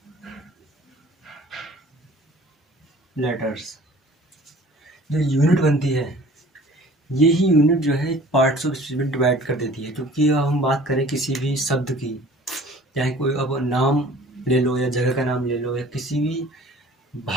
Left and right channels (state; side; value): normal; both; correlation 0.48